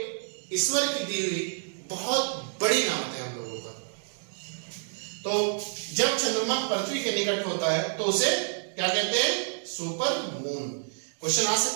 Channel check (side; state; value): left; silent; digital silence